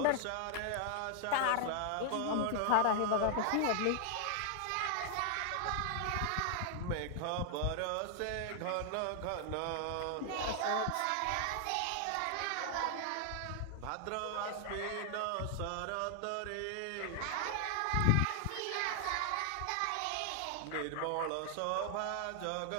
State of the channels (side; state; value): both; different; correlation 0.00